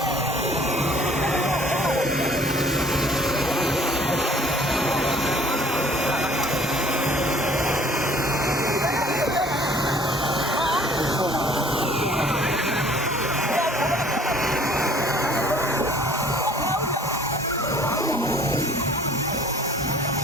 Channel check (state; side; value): normal; both; correlation 0.54